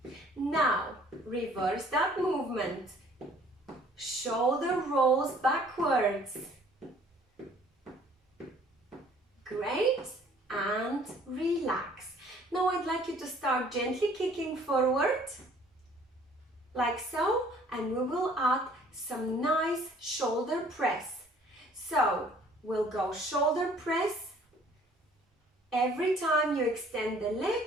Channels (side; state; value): both; normal; correlation 0.56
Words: Now, reverse that movement. Shoulder rolls backwards. Great, and relax. Now I'd like you to start gently kicking forward, like so, and we will add some nice shoulder press. So, we'll go shoulder press. Every time you extend the